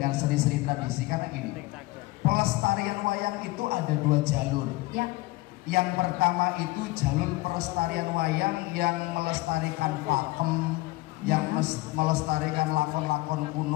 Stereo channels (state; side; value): quieter; right; 20.6 dB